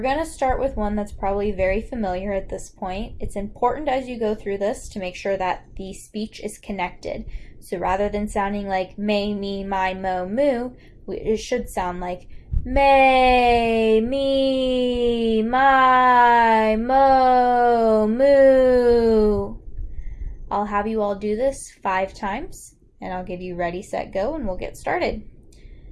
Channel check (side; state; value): both; identical; correlation 1.00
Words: to start with one that's probably very familiar at this point. It's important as you go through this to make sure that the speech is connected. So rather than sounding like may, me, my, mo, moo, it should sound like may, me, my, mo, moo. I'll have you all do this 5 times, and I'll give you ready, set, go, and we'll get started.